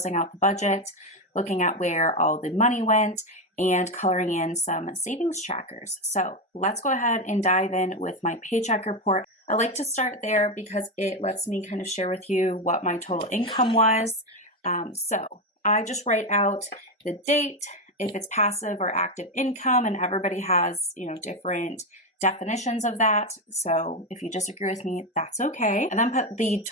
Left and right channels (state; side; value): normal; both; correlation 0.11